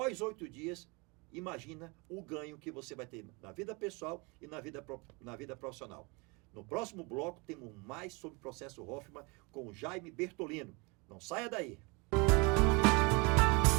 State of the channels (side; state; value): left; quieter; 28.7 dB